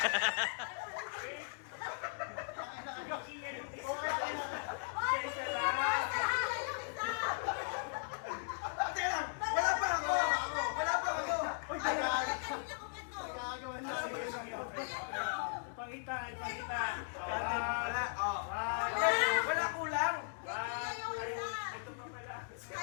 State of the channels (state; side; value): silent; right; digital silence